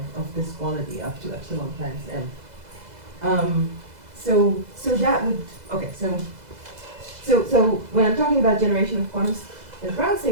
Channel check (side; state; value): left; late; 2.0 ms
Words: this quality up to epsilon times m. So that would, okay, so when I'm talking about generation of quantum ground